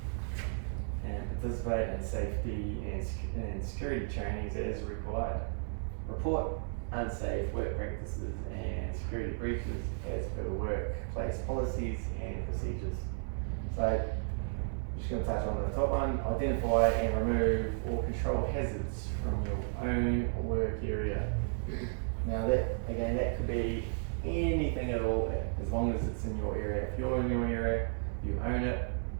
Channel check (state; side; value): silent; left; digital silence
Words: and participate in safety and security trainings as required. Report unsafe work practices and security breaches as per workplace policies and procedures. So I'm just going to touch on the top one: identify and remove or control hazards from your own work area. Now that could be anything at all, as long as it's in your area. If you're in your area, you own it.